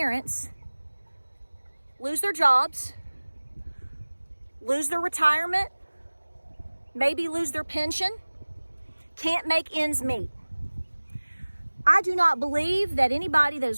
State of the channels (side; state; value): both; inverted; correlation -1.00